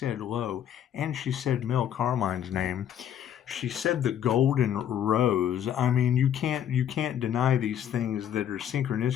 Lo, and she said Mel Carmine's name, she said the golden rose. I mean, you can't deny these things that are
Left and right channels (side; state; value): right; quieter; 9.8 dB